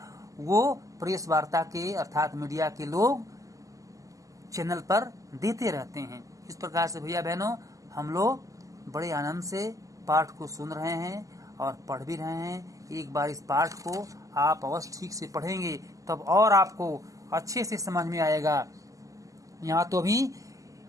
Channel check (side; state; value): left; late; 0.16 ms